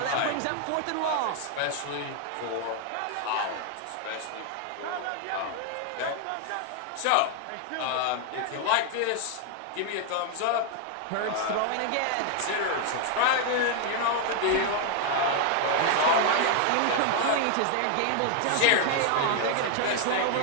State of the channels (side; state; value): both; different; correlation 0.00